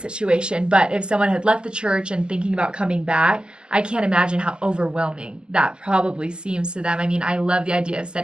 situation, but if someone had left the church and thinking about coming back, I can't imagine how overwhelming that probably seems to them. I mean, I love the idea of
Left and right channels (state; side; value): late; left; 0.048 ms